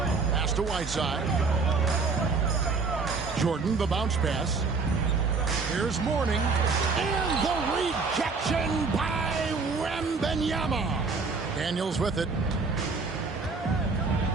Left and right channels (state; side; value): quieter; left; 4.4 dB